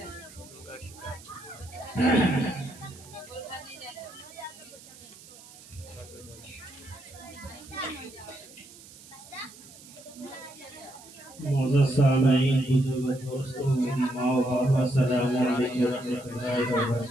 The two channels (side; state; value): right; noise; hiss, 20 dB below the sound